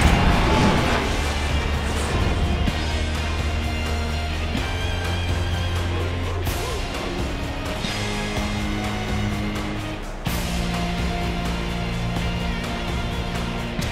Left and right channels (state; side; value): identical; both; correlation 1.00